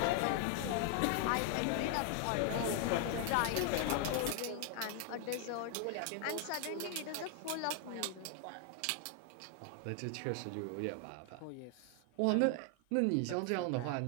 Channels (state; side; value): different; both; correlation 0.00